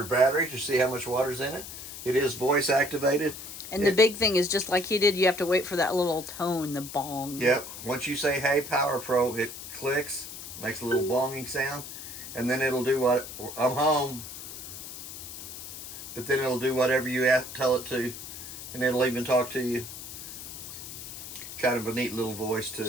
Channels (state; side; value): noise; left; hiss, 11 dB below the sound